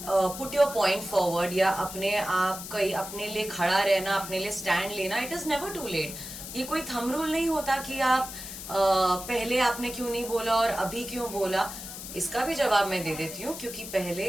put your point forward, या अपने आप कहीं अपने लिए खड़ा रहना, अपने लिए स्टैंड लेना. It is never too late. ये कोई थंब रूल नहीं होता कि आप पहले आपने क्यों नहीं बोला और अभी क्यों बोला. इसका भी जवाब मैं दे देती हूँ, क्योंकि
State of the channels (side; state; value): left; noise; hiss, 10 dB below the sound